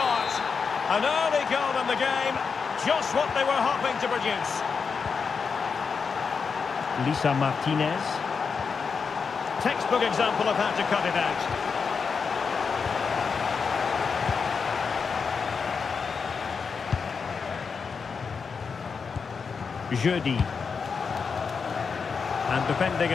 An early goal in the game. Just what they were hoping to produce. Lisa Martinez. Textbook example of how to cut it out. Jeudi. And defending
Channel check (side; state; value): right; quieter; 5.5 dB